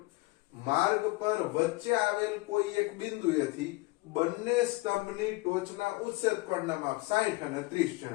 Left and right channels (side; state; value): right; quieter; 22.2 dB